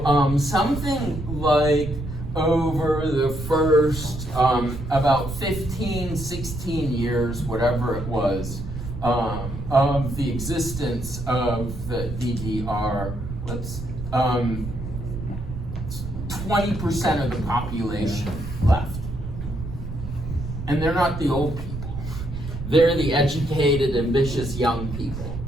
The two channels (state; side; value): noise; right; rumble, 8 dB below the sound